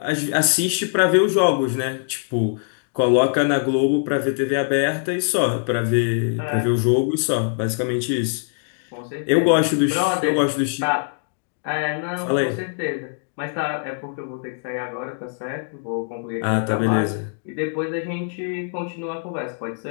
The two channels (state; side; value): silent; right; digital silence